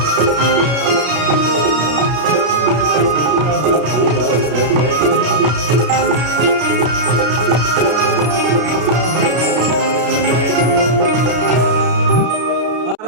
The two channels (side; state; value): left; late; 33 ms